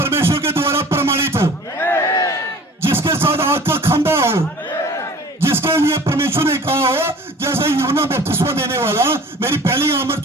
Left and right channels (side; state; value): both; normal; correlation 0.46